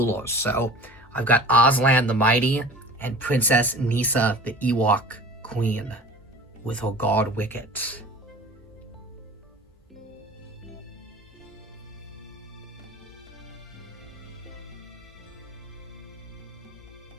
So I've got Aslan the Mighty and Princess Nissa the Ewok Queen with her guard Wicket.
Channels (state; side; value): normal; both; correlation 0.41